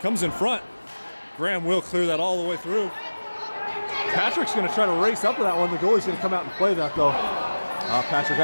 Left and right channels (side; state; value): both; inverted; correlation -1.00